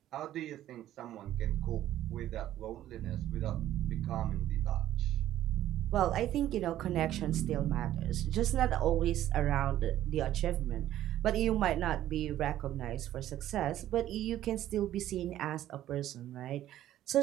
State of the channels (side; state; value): left; quieter; 12.9 dB